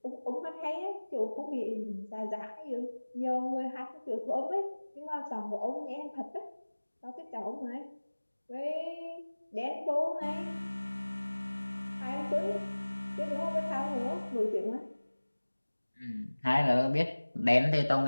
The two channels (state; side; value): inverted; both; correlation -1.00